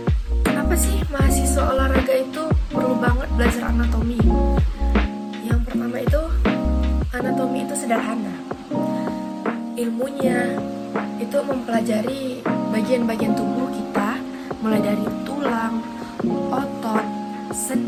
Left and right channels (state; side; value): identical; both; correlation 1.00